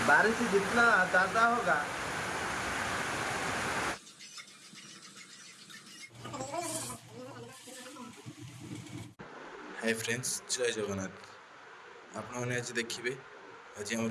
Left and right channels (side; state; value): both; identical; correlation 1.00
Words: बारिश जितना ज़्यादा होगा। हाय फ्रेंड्स, जय जगन्नाथ। आपने आज देखिए आज आम